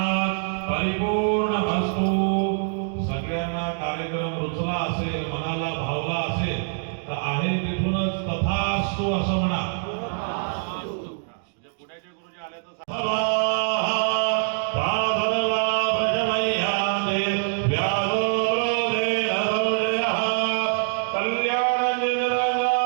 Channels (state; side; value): silent; left; digital silence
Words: परिपूर्णमस्तु. सगळ्यांना कार्यक्रम रुचला असेल मनाला भावला असेल तर आहे तिथूनच तथास्तु असं म्हणा. पुण्याचे गुरुजी आले तर